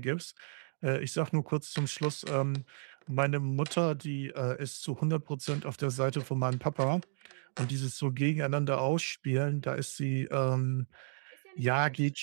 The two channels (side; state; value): left; silent; digital silence